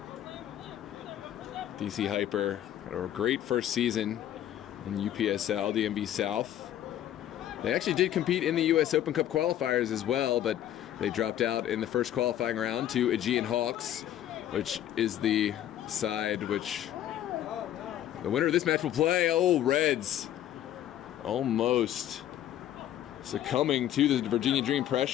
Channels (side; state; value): right; quieter; 11.7 dB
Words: DC Hyper had a great first season in UPSL, DMV South. They actually did compete in the US Open Cup qualifiers as well, but they dropped out in the first qualifying round to Aegean Hawks, which is the side which the winner of this match will play. Oh, Reds almost succumbing to the Virginia Dream